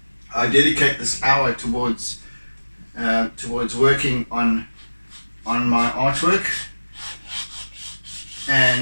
dedicate this hour towards working on my artwork,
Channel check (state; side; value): inverted; both; correlation -1.00